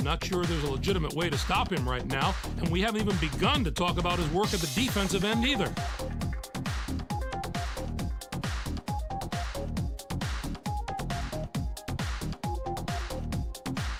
not sure there's a legitimate way to stop him right now, and we haven't even begun to talk about his work at the defensive end either.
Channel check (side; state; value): both; identical; correlation 1.00